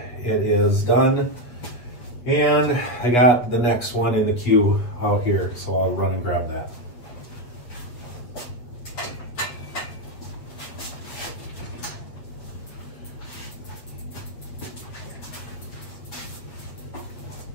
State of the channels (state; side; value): late; right; 8.6 ms